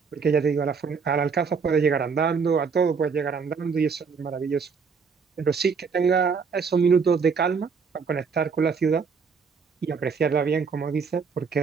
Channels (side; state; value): left; quieter; 5.5 dB